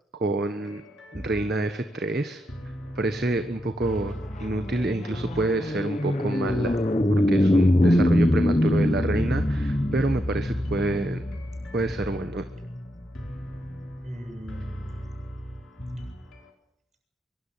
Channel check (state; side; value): normal; both; correlation 0.83